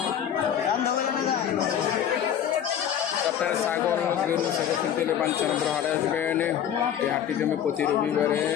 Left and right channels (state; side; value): quieter; right; 9.5 dB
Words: আপনারা ছাগল গরু ছাগল কিনতে হলে Banchanampur হাটে আসবেন। এই হাটটি জমে প্রতি রবিবারে।